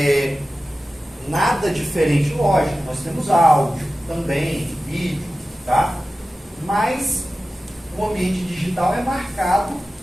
nada diferente, lógico, nós temos áudio também, vídeo, tá? Mas o ambiente digital é marcado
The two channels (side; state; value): both; normal; correlation 0.95